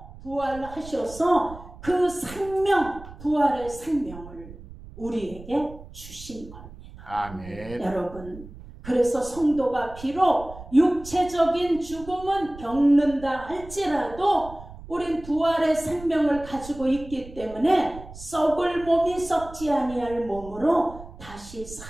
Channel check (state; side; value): noise; right; rumble, 16 dB below the sound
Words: 부활하셔서 그 생명, 부활의 생명을 우리에게 주신 겁니다. 아멘. 여러분, 그래서 성도가 비록 육체적인 죽음은 겪는다 할지라도 우린 부활의 생명을 가지고 있기 때문에 썩을 몸이 썩지 아니할 몸으로 다시